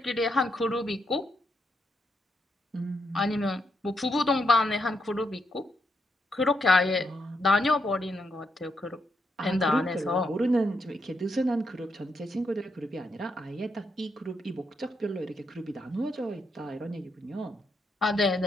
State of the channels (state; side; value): normal; both; correlation 0.80